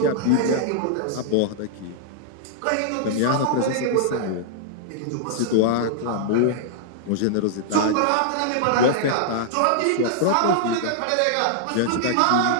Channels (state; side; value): different; both; correlation -0.01